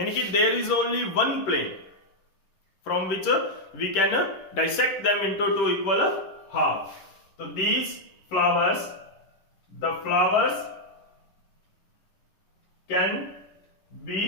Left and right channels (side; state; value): right; late; 10 ms